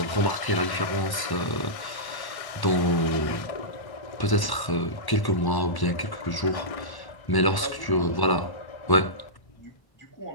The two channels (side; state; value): right; late; 1.1 ms